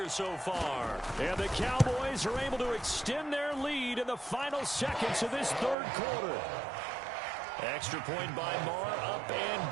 so far. And the Cowboys are able to extend their lead in the final seconds of this third quarter. Extra point by Marr, up and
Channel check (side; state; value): left; drops out; at 5.8 s